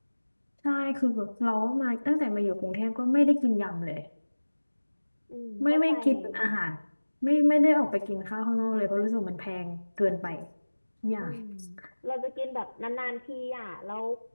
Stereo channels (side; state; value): both; inverted; correlation -1.00